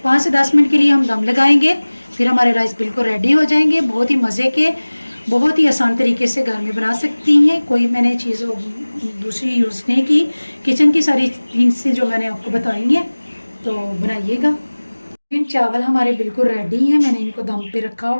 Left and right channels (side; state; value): both; inverted; correlation -1.00